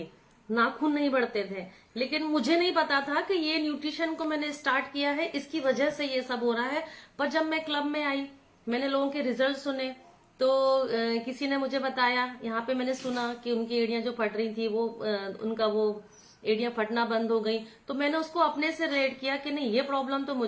नाखून नहीं बढ़ते थे। लेकिन मुझे नहीं पता था कि ये न्यूट्रिशन को मैंने स्टार्ट किया है, इसकी वजह से ये सब हो रहा है। पर जब मैं क्लब में आई, मैंने लोगों के रिजल्ट सुने, तो किसी ने मुझे बताया, यहाँ पे मैंने सुना कि उनकी एड़ियां जो फट रही थी वो उनका वो एड़ियां फटना बंद हो गई। तो मैंने उसको अपने से रिलेट किया कि नहीं, ये प्रॉब्लम तो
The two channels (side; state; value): both; identical; correlation 1.00